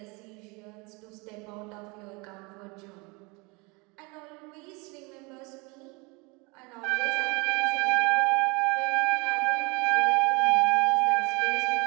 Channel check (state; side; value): quieter; left; 27.9 dB